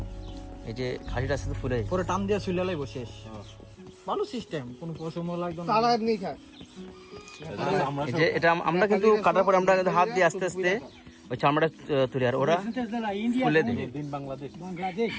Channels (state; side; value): identical; both; correlation 1.00